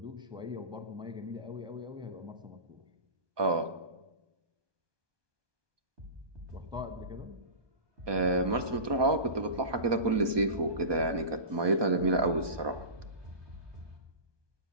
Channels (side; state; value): left; late; 1.2 ms